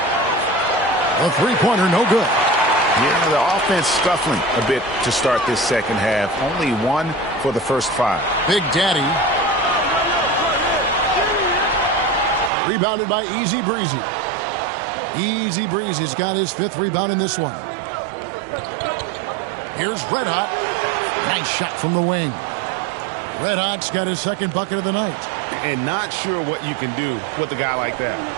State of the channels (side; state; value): left; drops out; at 12.5 s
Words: A three-pointer, no good. Yeah, the offense scuffling a bit to start this second half. Only 1 for the first 5. Big Daddy. Rebounded by Easy Breezy. Easy Breezy's got his 5th rebound in this one. Here's Red Hot. Nice shot from the wing. Red Hot's got his second bucket of the night. And not sure what you can do with a guy like that.